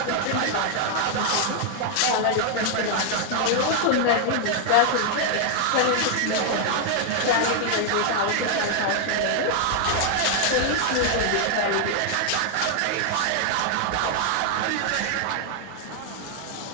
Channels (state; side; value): different; both; correlation 0.00